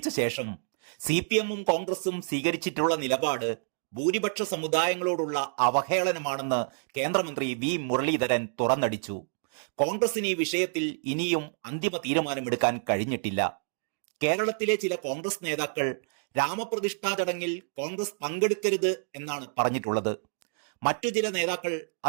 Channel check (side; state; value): left; silent; digital silence